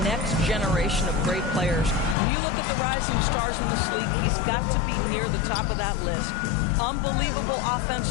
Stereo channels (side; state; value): right; drops out; at 2.1 s